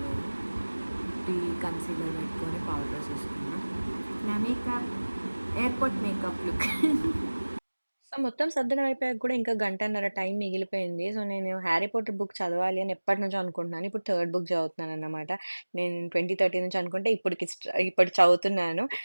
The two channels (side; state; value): both; inverted; correlation -1.00